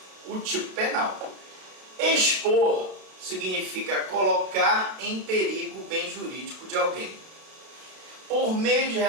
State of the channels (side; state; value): left; late; 33 ms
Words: o tipo penal. Expor significa colocar em perigo o bem jurídico de alguém por meio de